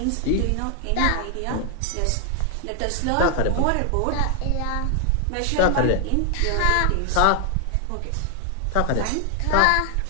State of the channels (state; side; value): different; both; correlation 0.00